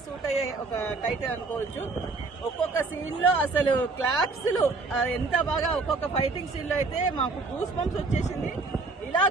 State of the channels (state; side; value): quieter; left; 3.8 dB